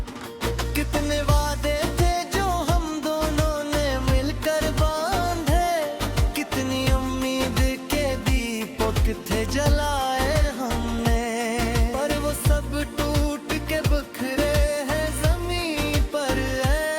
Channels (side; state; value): both; identical; correlation 1.00